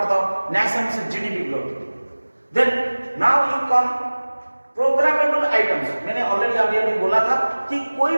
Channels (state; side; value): inverted; both; correlation -1.00